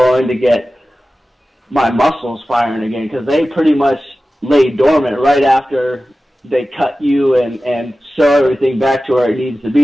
to get my muscles firing again, because they pretty much lay dormant right after they cut you and sew everything back to where it needs to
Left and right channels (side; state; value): both; normal; correlation 0.95